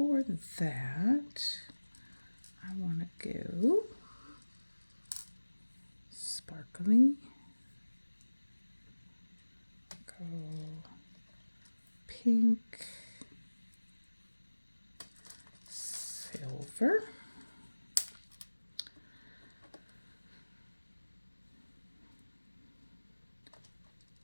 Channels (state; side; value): inverted; both; correlation -1.00